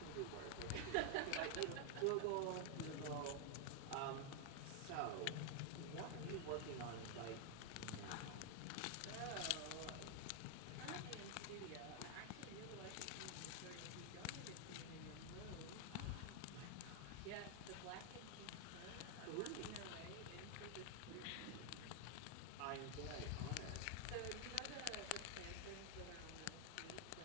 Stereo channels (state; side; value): different; both; correlation 0.00